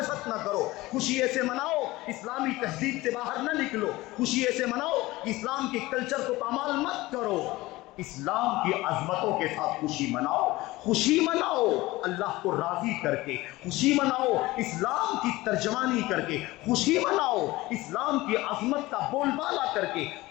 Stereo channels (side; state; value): right; quieter; 19.3 dB